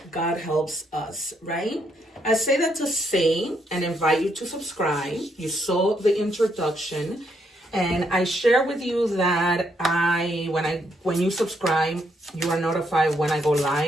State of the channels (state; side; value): normal; both; correlation 0.75